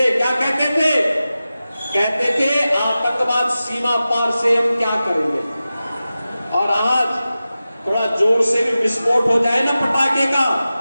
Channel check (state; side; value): inverted; both; correlation -0.94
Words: क्या कहते थे? कहते थे आतंकवाद सीमा पार से हम क्या करेंगे। और आज थोड़ा जोर से भी विस्फोट हो जाए ना पटाखे का